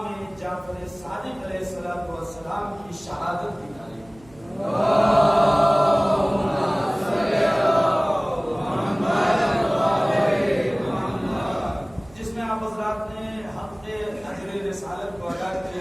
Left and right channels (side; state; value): right; noise; hum, 25 dB below the sound